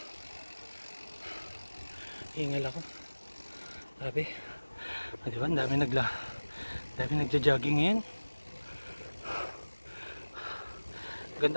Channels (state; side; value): inverted; both; correlation -1.00